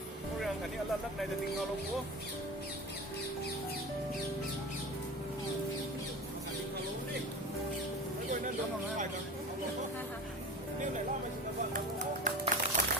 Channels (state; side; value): normal; both; correlation 0.31